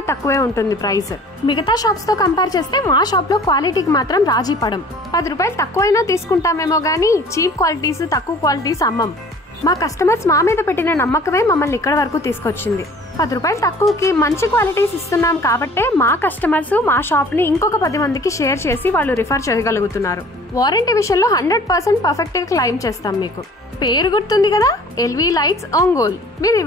తక్కువే ఉంటుంది ప్రైస్. మిగతా షాప్స్ తో కంపేర్ చేస్తే మా షాప్ లో క్వాలిటీకి మాత్రం రాజీ పడం. 10 రూపాయలు తక్కువైనా తీసుకుంటామేమో గానీ చీప్ క్వాలిటీస్, తక్కువ క్వాలిటీస్ అమ్మం. మా కస్టమర్స్ మా మీద పెట్టిన నమ్మకమే మమ్మల్ని ఇక్కడ వరకు తీసుకొచ్చింది. 10 రూపాయలు తక్కువకి మంచి క్వాలిటీస్ ఇస్తున్నాం కాబట్టే మా కస్టమర్స్ మా షాప్ ని ఇంకొక 10 మందికి షేర్ చేసి వాళ్ళు రిఫర్ చేయగలుగుతున్నారు. వారంటీ విషయంలో 100% పర్ఫెక్ట్ గా క్లెయిమ్ చేస్తాం. మీకు పేరు గుర్తుంది కదా, ఎల్వి లైట్స్ ఒంగోల్. మీరు ఈ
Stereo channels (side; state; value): both; normal; correlation 0.49